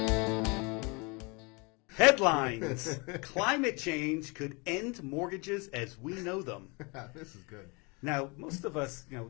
Headlines. Climate change could end mortgages as we know them. This is good. Now, most of us,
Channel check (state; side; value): quieter; right; 29.5 dB